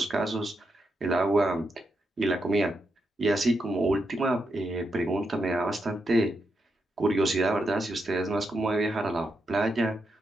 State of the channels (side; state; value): both; normal; correlation 0.83